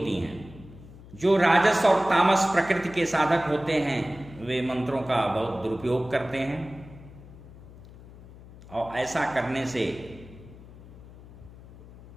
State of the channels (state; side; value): noise; left; hum, 19 dB below the sound